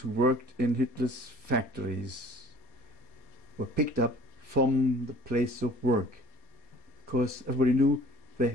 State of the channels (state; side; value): late; right; 4.3 ms